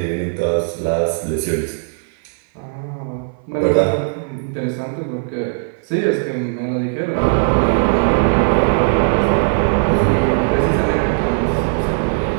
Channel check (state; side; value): silent; left; 56 dB below the other